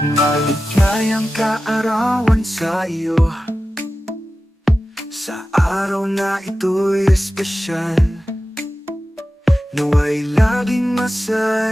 Maligayang kaarawan sa iyo, sa araw na ito'y espesyal. Nawa'y laging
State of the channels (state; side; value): normal; both; correlation 0.94